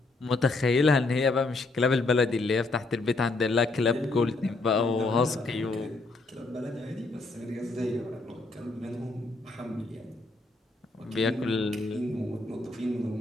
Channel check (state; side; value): quieter; right; 3.3 dB